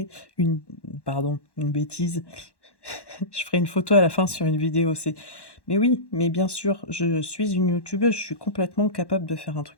une bêtise. Je ferai une photo à la fin sur une vidéo. Mais oui, mais bien sûr, je suis une youtubeuse, je suis complètement capable de faire un truc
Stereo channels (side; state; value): right; late; 1.1 ms